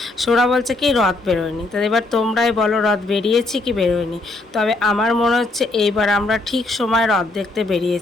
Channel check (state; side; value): quieter; right; 3.1 dB